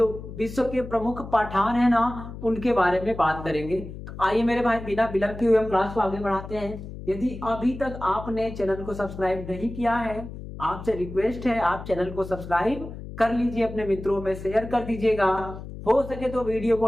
विश्व के प्रमुख पठान है ना, उनके बारे में बात करेंगे। तो आइए मेरे भाई, बिना विलंब किए हुए हम क्लास को आगे बढ़ाते हैं। यदि अभी तक आपने चैनल को सब्सक्राइब नहीं किया है, आपसे रिक्वेस्ट है आप चैनल को सब्सक्राइब कर लीजिए, अपने मित्रों में शेयर कर दीजिएगा, हो सके तो वीडियो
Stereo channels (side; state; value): left; noise; hum, 11 dB below the sound